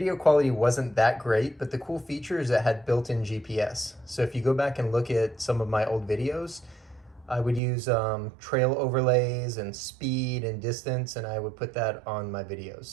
quality wasn't that great, but the cool feature is it had built-in GPS. So if you go back and look at some of my old videos, I would use trail overlays and speed and distance, and I would put that on my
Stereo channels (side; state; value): left; drops out; at 7.6 s